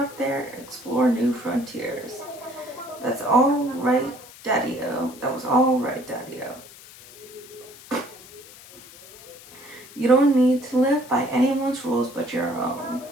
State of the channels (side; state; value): left; noise; hiss, 19 dB below the sound